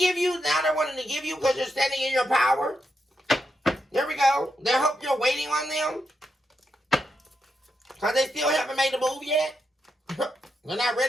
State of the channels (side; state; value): both; normal; correlation 0.84